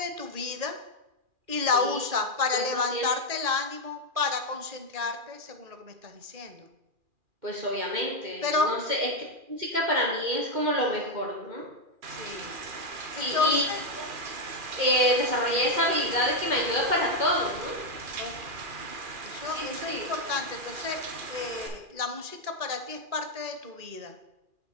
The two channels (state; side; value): late; left; 2.4 ms